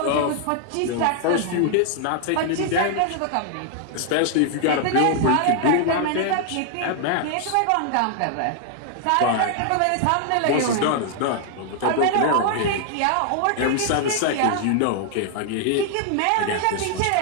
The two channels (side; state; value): both; different; correlation 0.00